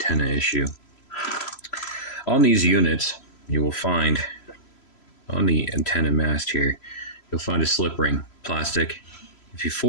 issue. On these units, you will find, on the antenna mast here, you'll find a slip ring, plastic. If you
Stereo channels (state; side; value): late; right; 3.0 ms